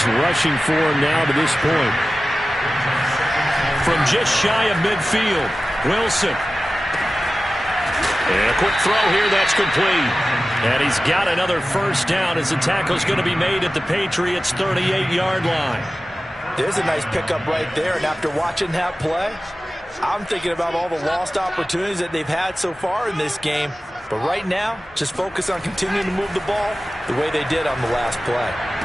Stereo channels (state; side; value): normal; both; correlation 0.95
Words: rushing for him now to this point. From just shy of midfield, Wilson. And a quick throw here, that's complete. And he's got another first down as the tackle's going to be made at the Patriots' 38-yard line. There's a nice pickup right there, and after watching that play, I'm thinking about all the lost opportunities that they've had so far in this game. But right now, just focus on continuing to move the ball the way they did on the last play.